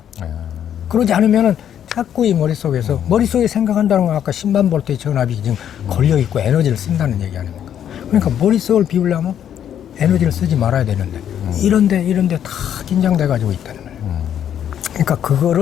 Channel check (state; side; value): quieter; right; 9.7 dB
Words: 그러지 않으면은 자꾸 이 머릿속에 생각한다는 건 아까 10만 볼트의 전압이 지금 걸려있고 에너지를 쓴다는 얘기 아닙니까? 그러니까 머릿속을 비우려면 에너지를 쓰지 말아야 되는데 이런데 다 긴장돼가지고 있다는 거예요. 그러니까